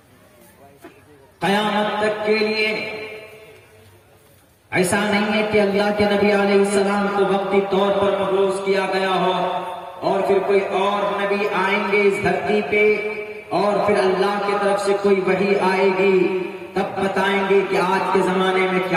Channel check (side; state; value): both; identical; correlation 1.00